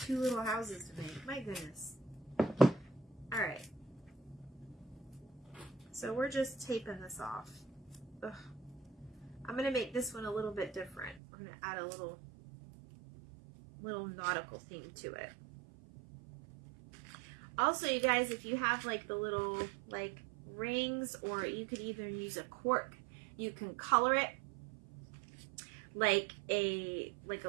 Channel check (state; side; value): drops out; left; at 11.2 s